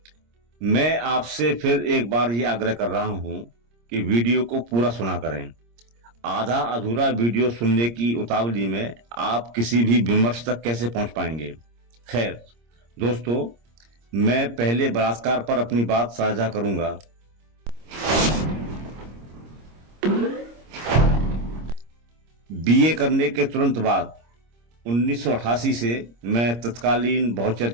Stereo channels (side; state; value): left; late; 26 ms